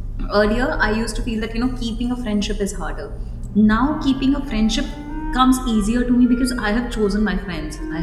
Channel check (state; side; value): identical; both; correlation 1.00